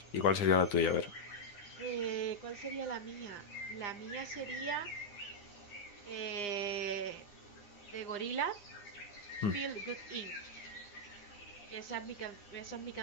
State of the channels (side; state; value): right; late; 9.8 ms